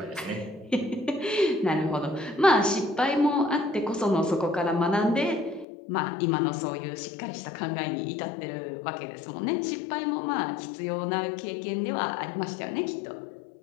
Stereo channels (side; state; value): right; drops out; at 5.7 s